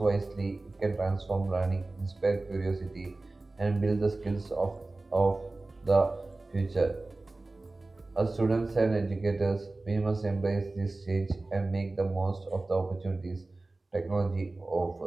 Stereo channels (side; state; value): left; quieter; 3.1 dB